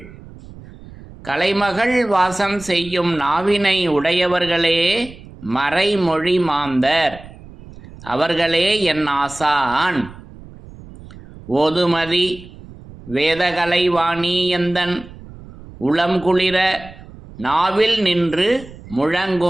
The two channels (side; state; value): right; noise; rumble, 18 dB below the sound